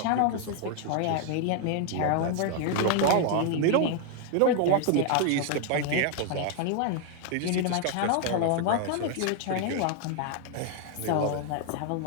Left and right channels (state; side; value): different; both; correlation 0.00